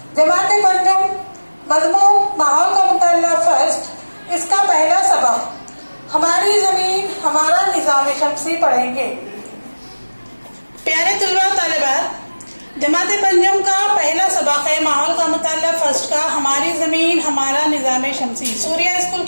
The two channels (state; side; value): inverted; both; correlation -1.00